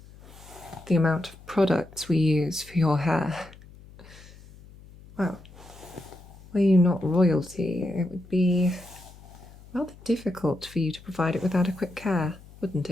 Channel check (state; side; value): noise; left; hum, 21 dB below the sound